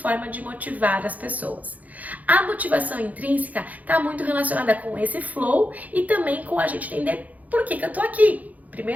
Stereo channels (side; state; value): left; late; 0.077 ms